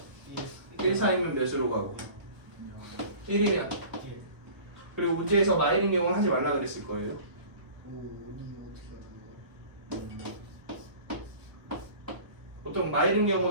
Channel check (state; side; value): late; left; 1.2 ms